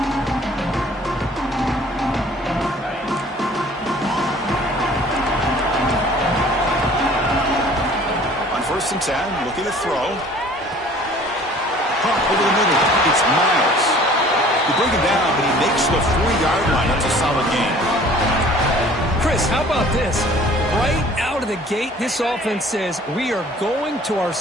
On 1st and 10, looking to throw. Pump over the middle. It's Miles. You bring him down, but he makes the 4-yard line. That's a solid gain. Chris, how about this? Right out of the gate, this offense says we are going to our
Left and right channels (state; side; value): normal; both; correlation 0.51